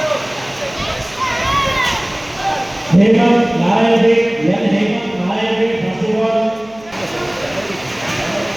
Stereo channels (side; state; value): right; noise; hum, 24 dB below the sound